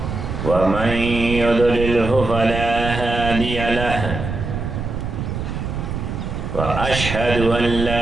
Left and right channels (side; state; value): right; noise; rumble, 5 dB below the sound